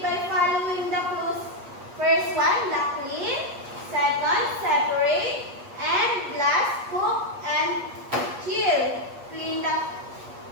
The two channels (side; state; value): left; late; 8.4 ms